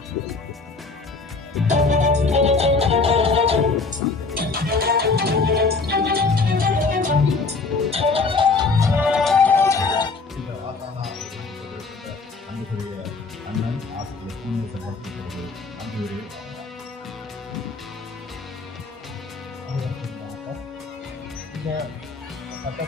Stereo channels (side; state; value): right; quieter; 4.1 dB